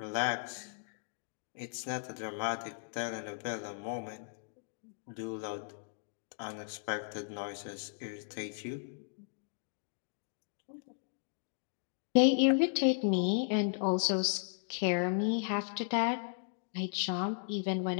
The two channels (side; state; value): right; silent; digital silence